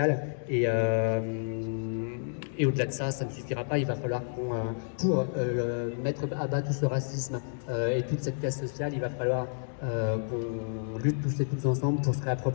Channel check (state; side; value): silent; right; digital silence